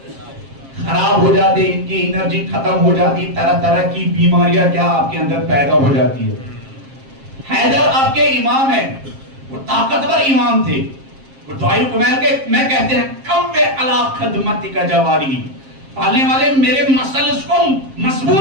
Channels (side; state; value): left; late; 7.5 ms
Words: خراب ہو جاتے ہیں, ان کی انرجی ختم ہو جاتی, طرح طرح کی بیماریاں کیا آپ کے اندر پیدا ہو جاتی ہے. حیدر آپ کے امام ہیں, وہ طاقتور امام تھے. وہ دعائے کمیل کے میں کہتے ہیں کم وے علا خدمتی کا جواری, پالنے والے میرے مسلس کو